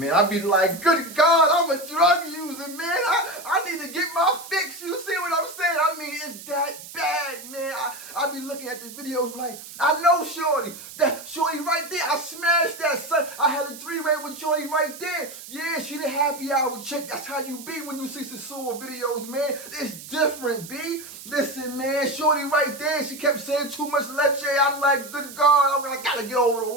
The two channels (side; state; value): right; noise; hiss, 14 dB below the sound